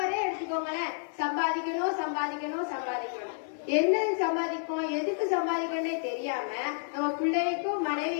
எடுத்துக்கோங்களேன், சம்பாதிக்கணும் சம்பாதிக்கணும் சம்பாதிக்கணும், என்ன சம்பாதிக்கும் எதுக்கு சம்பாதிக்கணும்னே தெரியாம நம்ம பிள்ளைக்கும்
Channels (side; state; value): right; silent; 58 dB below the other